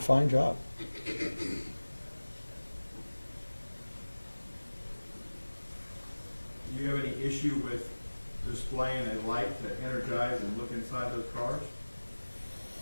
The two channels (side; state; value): both; inverted; correlation -1.00